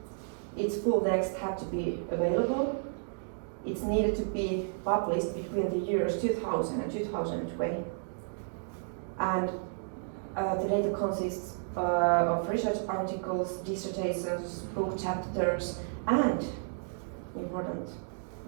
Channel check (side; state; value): left; silent; digital silence